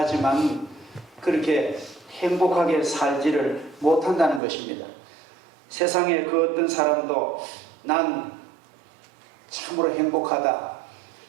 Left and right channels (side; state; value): left; drops out; at 4.4 s